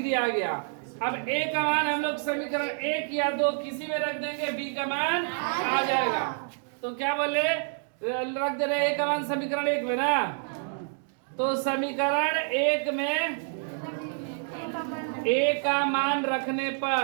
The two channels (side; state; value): left; silent; 59 dB below the other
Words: आ गया। अब a का मान हम लोग समीकरण 1 या 2 किसी में रख देंगे, b का मान आ जाएगा। तो क्या बोले? रख दे रहे a का मान समीकरण 1 में ना। तो समीकरण 1 में a का मान रखने